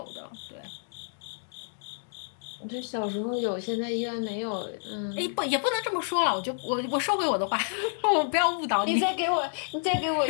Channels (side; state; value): right; silent; digital silence